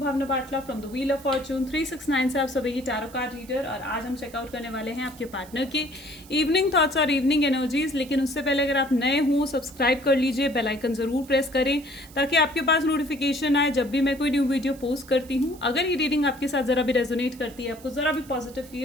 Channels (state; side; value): noise; right; hiss, 22 dB below the sound